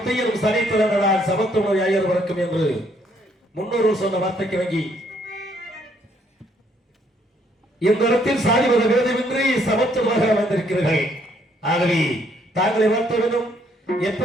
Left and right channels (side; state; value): both; normal; correlation 0.68